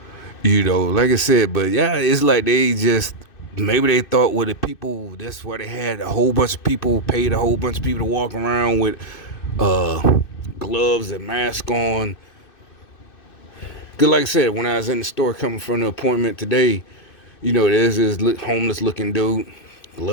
Like I said, but yeah, it's like they just maybe they thought with the people. That's why they had a whole bunch of people, paid a whole bunch of people to walk around with gloves and mask on. Cause like I said, when I was in the store coming from the appointment today, there's this homeless looking dude,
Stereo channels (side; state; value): right; late; 2.6 ms